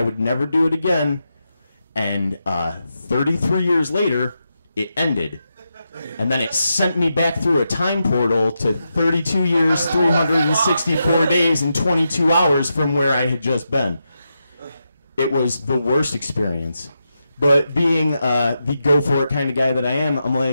would never do it again. And 33 years later, it ended. And then it sent me back through a time portal to 32 years, 364 days, and 22 hours from where I had just been. It was the worst experience. But being the go-for-it kind of guy that I am, I'm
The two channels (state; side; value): inverted; both; correlation -0.86